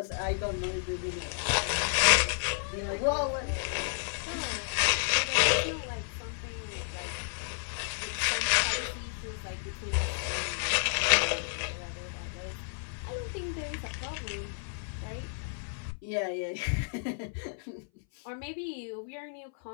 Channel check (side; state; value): right; silent; 57 dB below the other